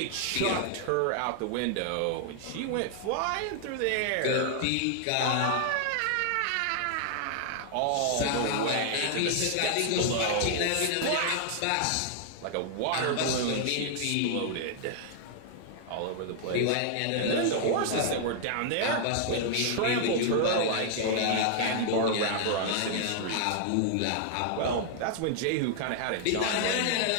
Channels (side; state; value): both; different; correlation 0.00